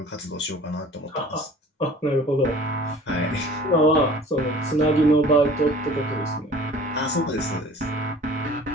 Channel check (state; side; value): normal; both; correlation 0.46